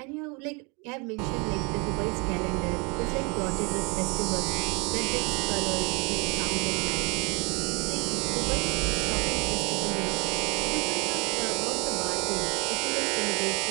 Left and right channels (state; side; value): quieter; left; 31.1 dB